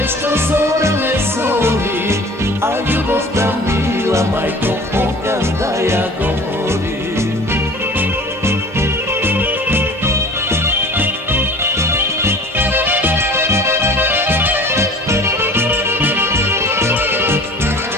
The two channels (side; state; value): both; normal; correlation 0.43